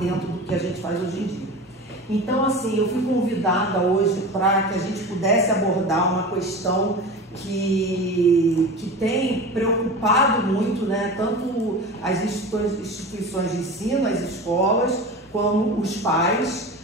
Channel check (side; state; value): both; normal; correlation 0.31